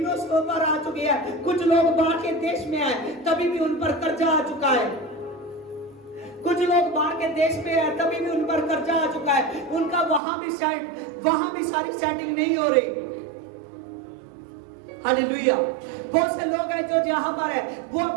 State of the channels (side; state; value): left; drops out; at 10.2 s